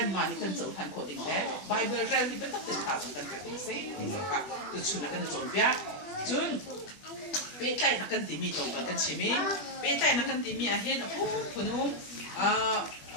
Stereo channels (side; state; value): right; late; 21 ms